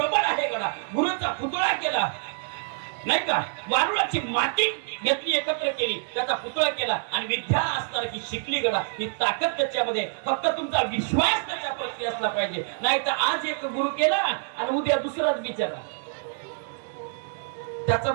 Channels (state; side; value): silent; left; digital silence